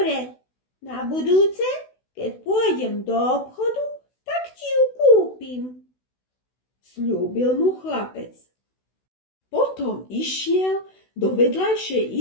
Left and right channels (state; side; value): late; right; 16 ms